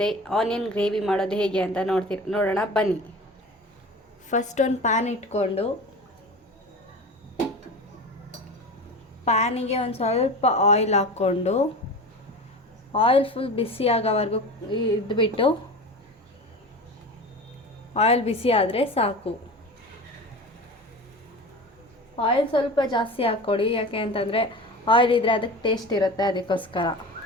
ಆನಿಯನ್ ಗ್ರೇವಿ ಮಾಡೋದು ಹೇಗೆ ಅಂತ ನೋಡೋಣ ಬನ್ನಿ. ಫಸ್ಟ್ ಒಂದು ಪ್ಯಾನ್ ಇಟ್ಕೊಂಡು ಪ್ಯಾನಿಗೆ ಒಂದು ಸ್ವಲ್ಪ ಆಯಿಲ್ ಹಾಕ್ಕೊಂಡು ಆಯಿಲ್ ಫುಲ್ ಬಿಸಿ ಆಗೋವರೆಗೂ ಇದ್ಬಿಟ್ಟು ಆಯಿಲ್ ಬಿಸಿ ಆದರೆ ಸಾಕು. ಆಯಿಲ್ ಸ್ವಲ್ಪ ಜಾಸ್ತಿ ಹಾಕ್ಕೊಡಿ, ಯಾಕೆ ಅಂತಂದರೆ ಆಯಿಲ್ ಇದ್ದರೆ ಅದಕ್ಕೆ ಟೇಸ್ಟ್ ಇರುತ್ತೆ, ಅದಕ್ಕೋಸ್ಕರ.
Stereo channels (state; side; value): normal; both; correlation 0.32